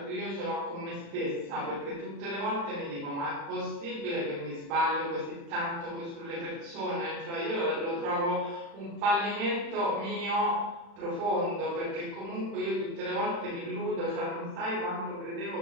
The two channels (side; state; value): left; late; 35 ms